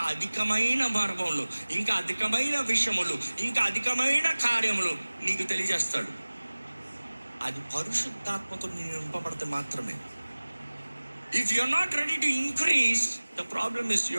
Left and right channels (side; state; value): both; inverted; correlation -1.00